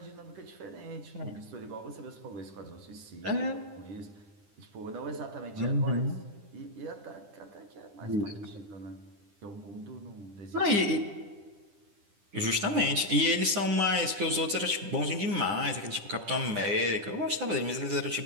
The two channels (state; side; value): late; left; 10 ms